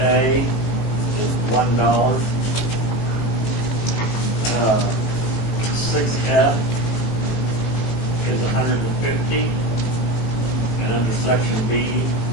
is $1. 6F is $150, and under section B,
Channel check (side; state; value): right; late; 19 ms